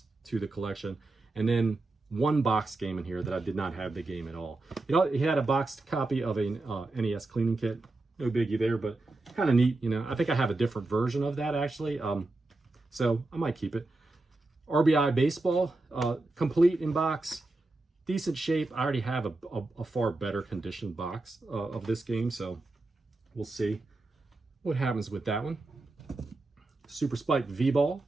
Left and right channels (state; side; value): quieter; left; 3.0 dB